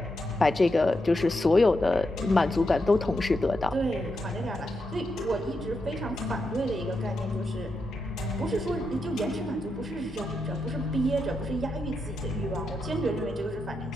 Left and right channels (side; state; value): both; normal; correlation 0.85